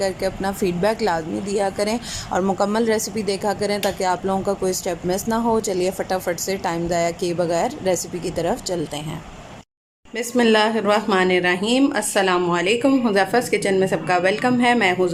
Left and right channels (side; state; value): both; identical; correlation 1.00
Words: अपना फ़ीडबैक लाजमी दिया करें और मुकम्मल रेसिपी देखा करें ताकि आप लोगों का कोई स्टेप मिस ना हो। चलिए फटाफट से टाइम ज़ाया किए बगैर रेसिपी की तरफ चलते हैं। बिस्मिल्लाहिर्रहमानिर्रहीम। अस्सलामुअलैकुम। हुज़ैफ़ा's किचन में सबका वेलकम है। मैं हूँ